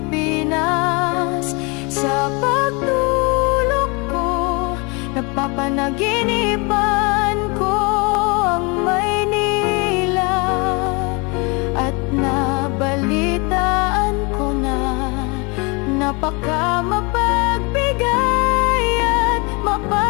Sa pagtulog ko, napapanaginipan ko ang Maynila, at nabalitaan ko na napaka mapagbigay at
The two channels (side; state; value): right; quieter; 29.5 dB